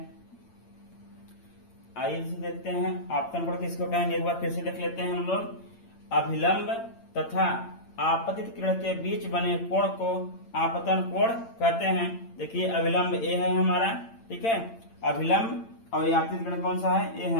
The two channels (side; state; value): right; late; 8.8 ms